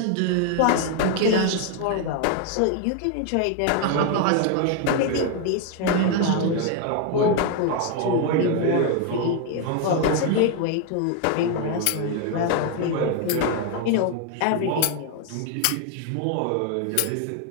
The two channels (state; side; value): different; both; correlation 0.01